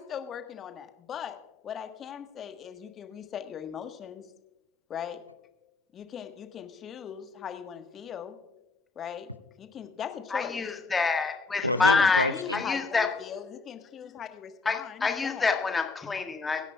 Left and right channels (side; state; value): right; quieter; 4.2 dB